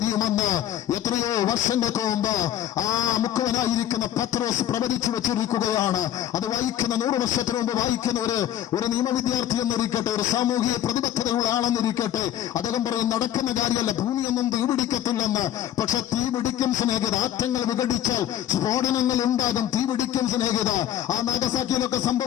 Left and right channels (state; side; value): quieter; right; 11.4 dB